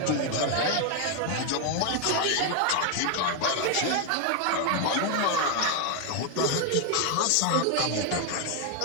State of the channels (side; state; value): both; different; correlation 0.01